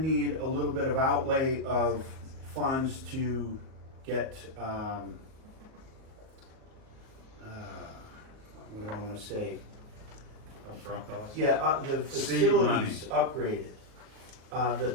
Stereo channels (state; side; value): late; left; 38 ms